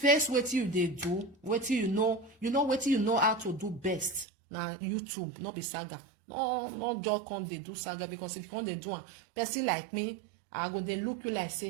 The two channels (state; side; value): drops out; left; at 4.2 s